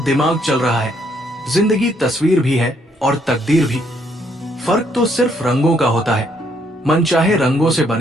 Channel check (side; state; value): both; normal; correlation 0.70